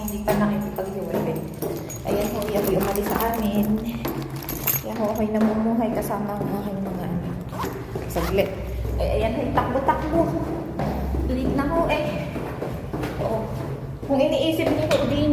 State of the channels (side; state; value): both; identical; correlation 1.00